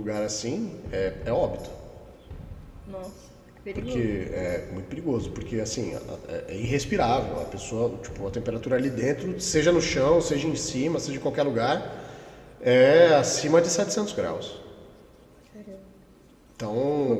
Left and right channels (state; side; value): identical; both; correlation 1.00